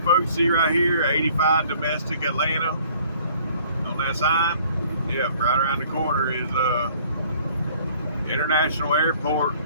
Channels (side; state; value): both; inverted; correlation -0.56